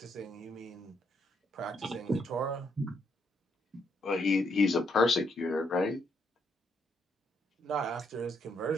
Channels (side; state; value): both; normal; correlation 0.75